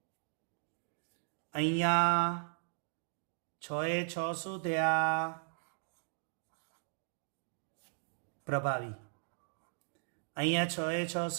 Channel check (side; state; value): left; silent; digital silence